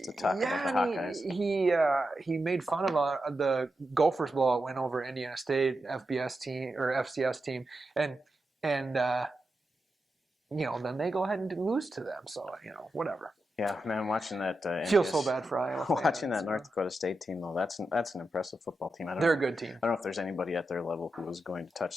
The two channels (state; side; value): normal; both; correlation 0.89